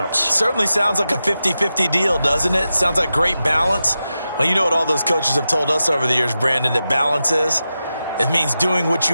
Certainly sounds like a 50-50 deal, doesn't it? Sounds like great balance. Well, you know what all those coaches have told us over the years, Brandon, that balance is? It means doing what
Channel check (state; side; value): inverted; both; correlation -0.91